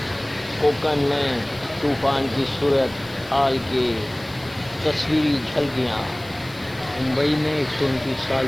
कोंकण में तूफ़ान की सूरत हाल की तस्वीरी झलकियाँ। मुंबई में 129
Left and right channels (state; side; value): noise; left; hiss, 23 dB below the sound